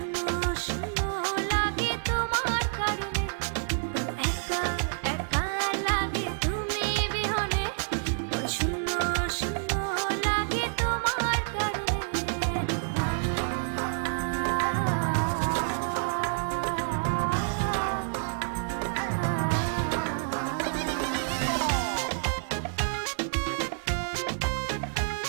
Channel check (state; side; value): silent; left; digital silence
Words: শূন্য লাগে তোমার কারণে। একা একা লাগে তুমি বিহনে, শূন্য শূন্য লাগে তোমার কারণে।